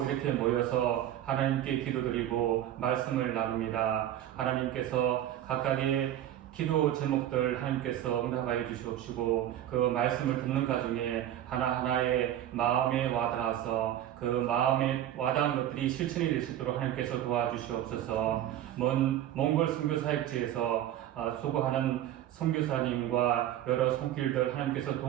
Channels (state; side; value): quieter; left; 12.0 dB